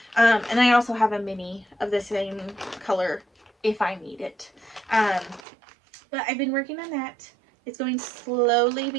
And I also have a mini of the same color if I need it. But I've been working on that. It's going slowly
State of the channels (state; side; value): drops out; left; at 5.5 s